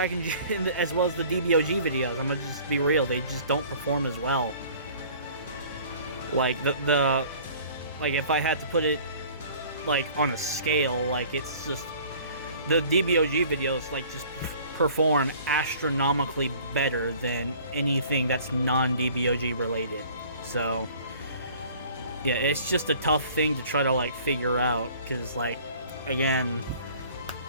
as well as the DBOG videos. I'm gonna just be real, they just don't perform as well. Like, like, if I had to put it, like, on a scale, like, it's just, the DBOG videos, like, just perform astronomically better than anything that's non-DBOG related. So, yeah, it's just a tough thing to try to, like, figure out, because, like, again,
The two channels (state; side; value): inverted; both; correlation -0.50